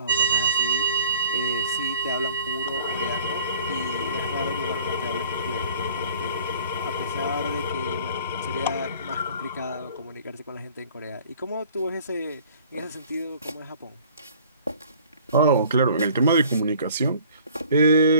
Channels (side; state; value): both; inverted; correlation -0.51